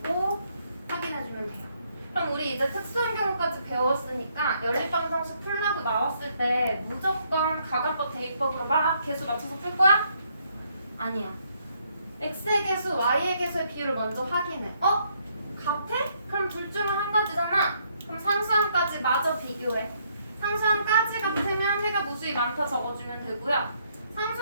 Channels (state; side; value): inverted; both; correlation -0.71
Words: 확인해주면 돼요. 그럼 우리 이제 특수한 경우까지 배웠으니까 연립방정식 풀라고 나왔을 때 무조건 가관법 대입법으로 막 개수 맞춰서 풀 거야? 아니야. x의 개수, y의 개수의 비율을 먼저 확인해. 어? 같아? 그럼 둘 중에 한 가지잖아. 그럼 상수항까지 마저 비교해. 상수항까지 같으면 해가 무수히 많다 적어주면 되고요.